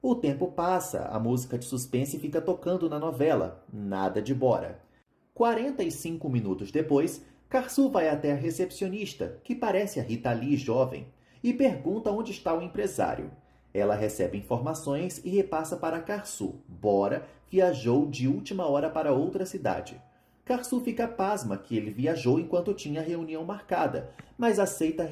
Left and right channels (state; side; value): identical; both; correlation 1.00